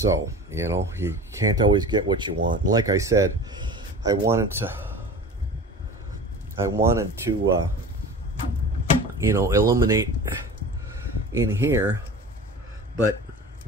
you know, you can't always get what you want. And like I said, I wanted to you know, illuminate in here, but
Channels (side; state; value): both; normal; correlation 0.36